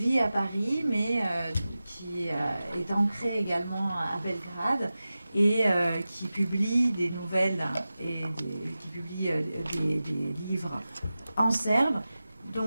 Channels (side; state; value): both; inverted; correlation -0.95